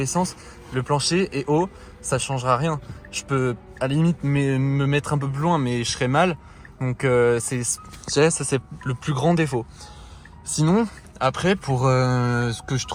sens, le plancher est haut, ça changera rien. Je peux à la limite me mettre un peu plus loin, mais je serai mal. Donc ça c'est le plus grand défaut. Sinon, après, pour ce que je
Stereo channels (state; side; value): identical; both; correlation 1.00